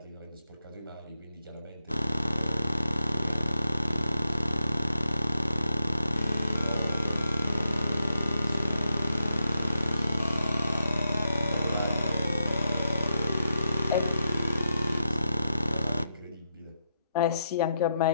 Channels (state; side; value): inverted; both; correlation -0.83